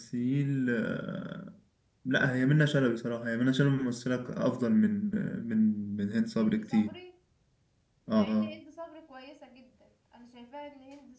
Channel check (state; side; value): identical; both; correlation 1.00